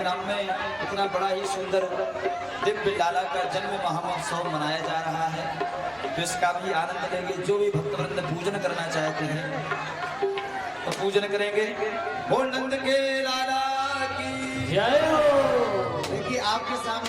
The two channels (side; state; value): both; identical; correlation 1.00